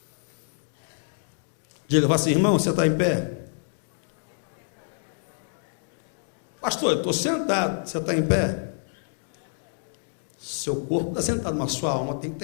Diga, fala assim: irmão, você está em pé? Pastor, eu estou sentado. Você está em pé? Seu corpo está sentado, mas sua alma tem que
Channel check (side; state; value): right; silent; digital silence